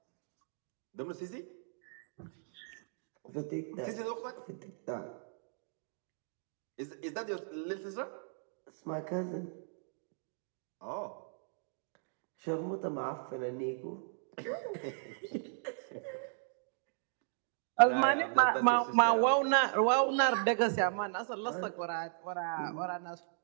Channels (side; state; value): left; silent; digital silence